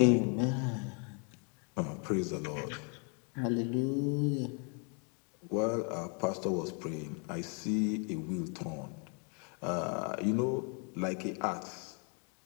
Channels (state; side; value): quieter; right; 37.9 dB